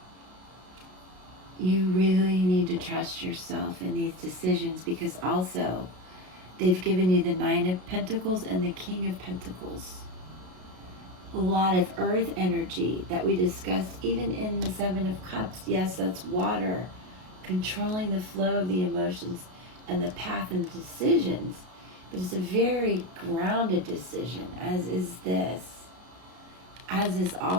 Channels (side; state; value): left; late; 33 ms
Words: You really need to trust yourself in these decisions, because also they've given you the Nine of Pentacles and the King of Pentacles. A lot of earth energy that we discussed even in the Seven of Cups. Yes, that's water, controlling the flow of the emotions and the path and decisions. But it's a very grounded decision, as is this, as is